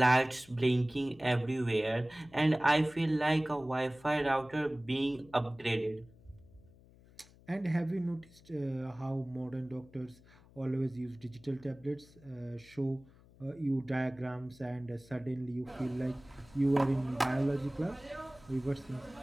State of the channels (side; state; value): left; noise; hum, 25 dB below the sound